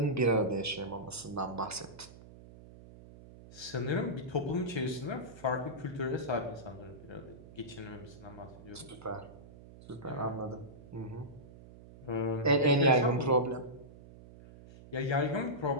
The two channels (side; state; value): right; noise; hum, 18 dB below the sound